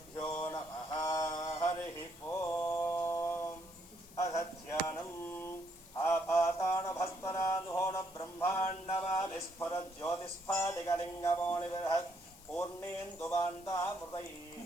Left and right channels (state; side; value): noise; left; hiss, 20 dB below the sound